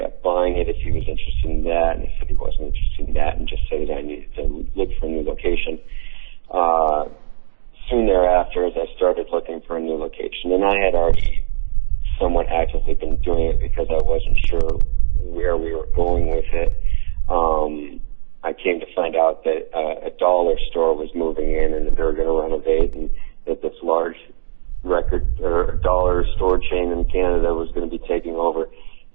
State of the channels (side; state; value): left; silent; digital silence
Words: buying it if he was interested in that, and he said he wasn't interested in that and just said that I needed to look for a new location. Soon thereafter, as I started looking for a new location, and I had already somewhat actively been doing it because I wasn't sure where we were going with it, I came to find out that a dollar store was moving in and that they were going to renovate, and that this large record or dollar store chain in Canada was going to be taking over,